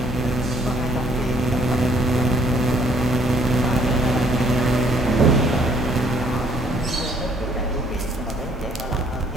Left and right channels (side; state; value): both; normal; correlation 0.63